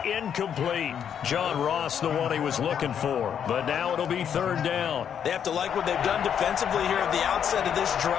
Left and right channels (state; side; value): quieter; right; 8.5 dB